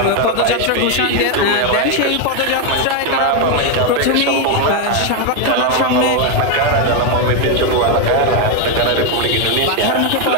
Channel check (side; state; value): both; different; correlation 0.01